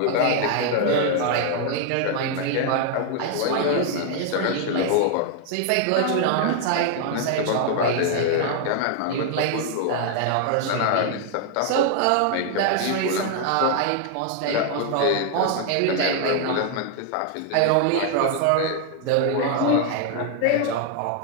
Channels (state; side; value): different; both; correlation 0.00